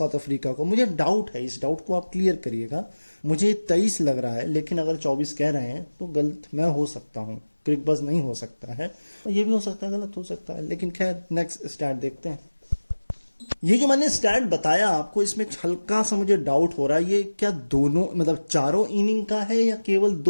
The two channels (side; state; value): both; inverted; correlation -1.00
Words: अफ्रीका को। मुझे डाउट है, इस डाउट को आप क्लियर करिएगा। मुझे 23 लग रहा है, लेकिन अगर 24 कह रहे हैं तो गलत मैं हो सकता हूँ, क्रिकबज़ नहीं हो सकता है, ये भी हो सकता है, गलत हो सकता है, लेकिन खैर नेक्स्ट स्टैट देखते हैं। ये जो मैंने स्टैट बताया आपको, इसमें हल्का सा मुझे डाउट हो रहा है, ये क्या दोनों, मतलब चारों इनिंग का है या केवल